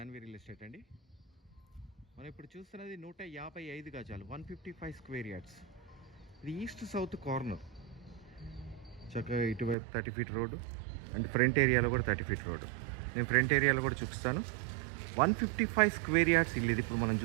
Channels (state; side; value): drops out; left; at 9.8 s